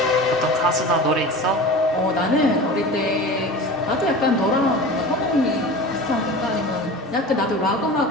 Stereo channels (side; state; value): both; normal; correlation 0.34